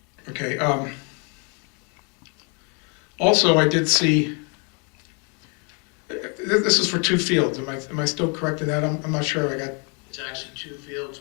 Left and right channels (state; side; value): quieter; right; 35.3 dB